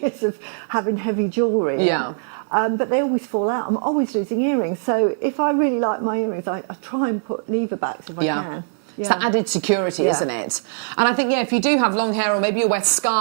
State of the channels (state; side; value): silent; left; 65 dB below the other